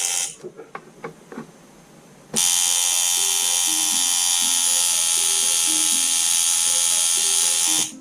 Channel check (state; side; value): identical; both; correlation 1.00